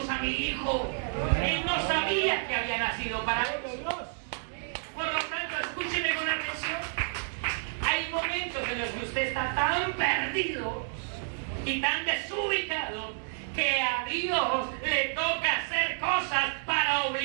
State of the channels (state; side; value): silent; left; digital silence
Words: a mi hijo. Él no sabía que había nacido para eso. Por lo tanto, escúcheme con atención. Hay momentos en los que usted está tan perdido y tan desubicado que a Dios le toca hacer cosas para